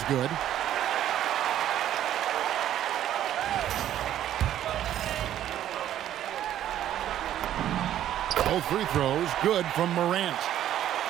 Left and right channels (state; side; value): quieter; left; 11.6 dB